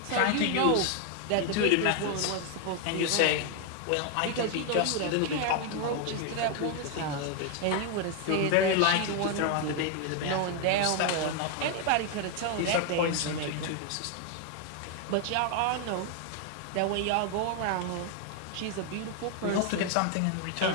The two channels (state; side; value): different; both; correlation 0.01